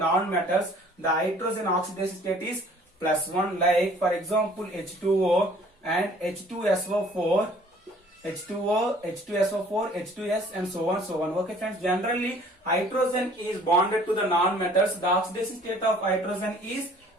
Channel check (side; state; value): both; normal; correlation 0.54